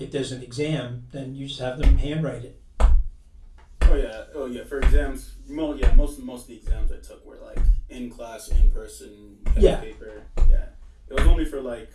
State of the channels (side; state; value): both; identical; correlation 1.00